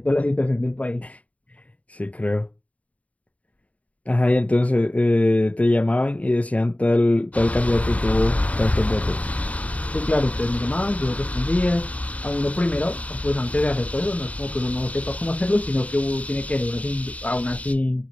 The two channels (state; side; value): late; right; 0.068 ms